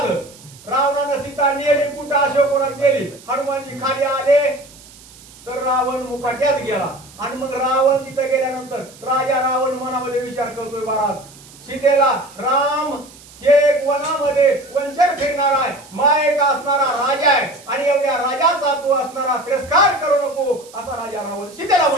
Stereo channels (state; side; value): noise; right; hiss, 22 dB below the sound